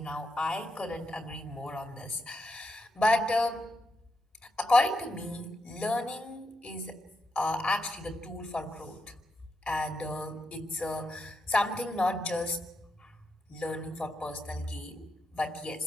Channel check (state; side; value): normal; both; correlation 0.83